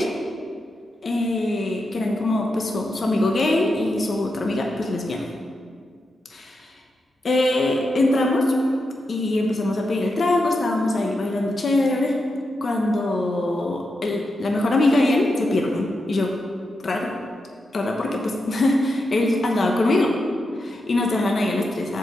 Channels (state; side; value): normal; both; correlation 0.87